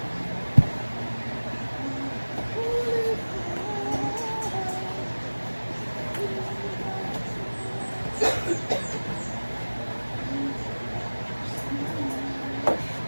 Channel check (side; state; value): both; inverted; correlation -1.00